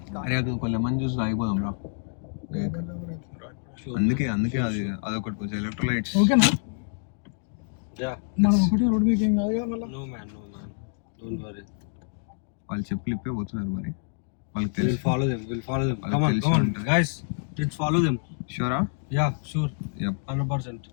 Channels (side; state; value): right; silent; digital silence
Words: కొంచెం మంది చూసి ఆగిపోదాం రా. అందుకే అది అదొకటి కొంచెం ఎలక్ట్రోలైట్స్. ఓకేనా? యా, మనం ఒకటి రోడ్ మీద ఏం కాదు కదా మళ్ళీ. No man don't worry. వాళ్ళు చెప్పులు ఇప్పే పోతున్నారు, మరి వాళ్ళకి తెలుసు. We'll follow them. Come on guys, let's follow them. Sure? Yeah, sure. Yep. 100%.